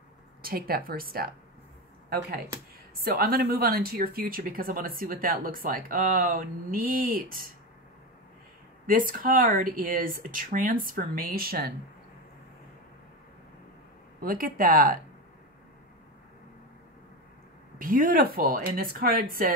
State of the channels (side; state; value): both; normal; correlation 0.18